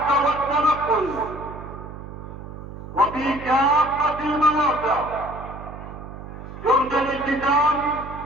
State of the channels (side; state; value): right; noise; hum, 12 dB below the sound